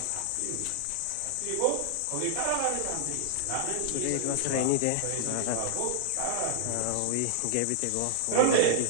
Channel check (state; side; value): different; both; correlation 0.00